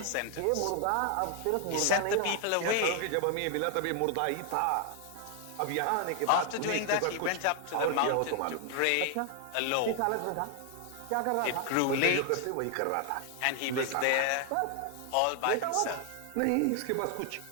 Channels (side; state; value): both; different; correlation 0.00